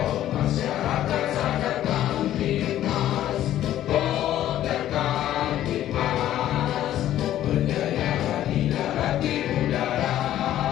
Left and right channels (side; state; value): right; quieter; 12.5 dB